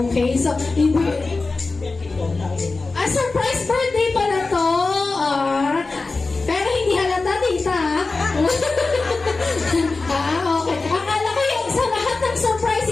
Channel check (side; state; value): right; quieter; 3.7 dB